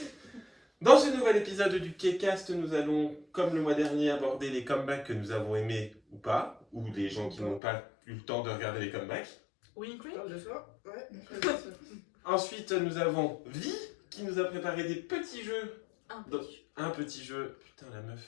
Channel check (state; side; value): drops out; right; at 7.6 s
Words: Dans ce nouvel épisode du K-Cast, nous allons, comme le mois dernier, aborder les comebacks que nous avons aimés ou pas, ou les gens qui n'ont pas eu le temps de regarder les comebacks. Winfrey. Ah, Parle de soi. Ouais. Ensuite, nous avons Vi qui nous a préparé des petits jeux. Un Un petit jeu. Putain, la meuf.